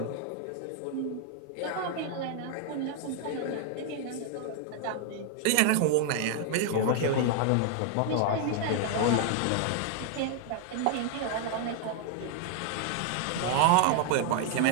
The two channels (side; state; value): both; different; correlation 0.00